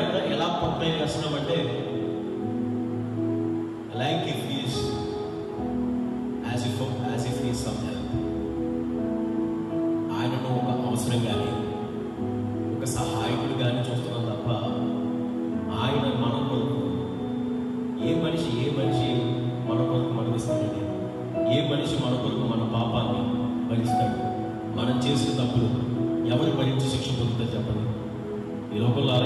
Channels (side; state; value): both; identical; correlation 1.00